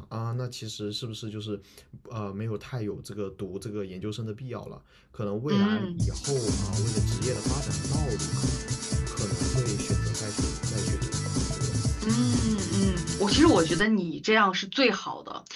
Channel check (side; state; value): both; identical; correlation 1.00